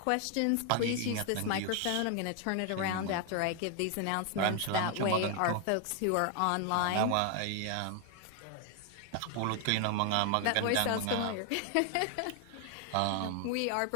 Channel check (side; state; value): both; different; correlation 0.00